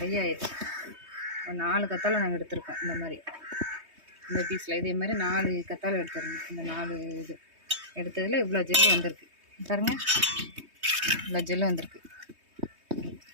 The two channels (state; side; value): late; left; 3.2 ms